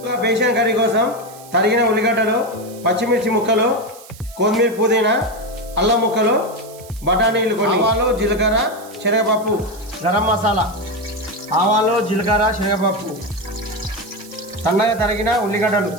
బేసన్ కర్రీ కోసం తరిగిన ఉల్లిగడ్డలు, పచ్చిమిర్చి ముక్కలు, కొత్తిమీర, పుదీనా, అల్లం ముక్కలు, బఠానీలు, కొన్ని ఆవాలు, జీలకర్ర, శనగపప్పు, గరం మసాలా, ఆవాలు, జీలకర్ర, శనగపప్పు, సన్నగా తరిగిన ఉల్లిగడ్డలు,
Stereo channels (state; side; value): noise; right; hiss, 20 dB below the sound